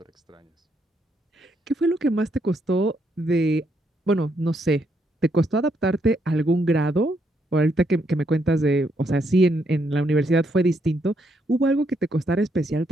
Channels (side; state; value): both; normal; correlation 0.76